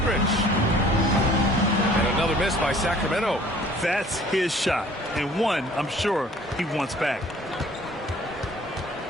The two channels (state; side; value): normal; both; correlation 0.53